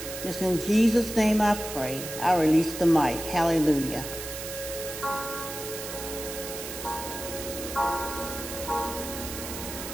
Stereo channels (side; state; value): right; noise; hiss, 8 dB below the sound